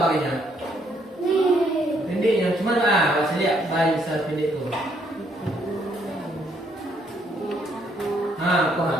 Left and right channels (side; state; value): both; normal; correlation 0.70